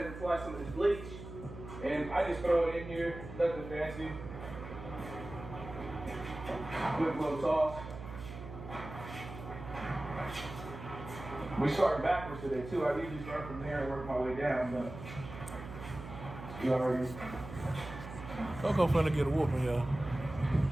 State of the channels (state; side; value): noise; right; hum, 11 dB below the sound